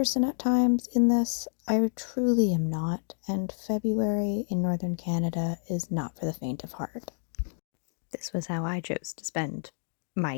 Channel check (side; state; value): right; silent; digital silence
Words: at times in this, I truly am not, and February in northern Canada is not for the faint of heart. This was how I chose to spend my